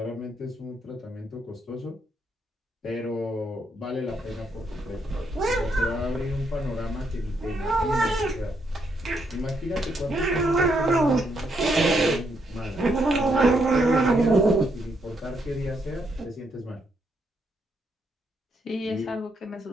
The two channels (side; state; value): both; normal; correlation 0.76